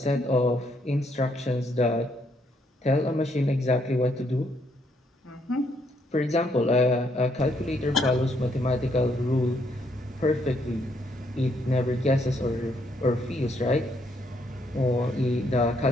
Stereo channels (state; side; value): normal; both; correlation 0.73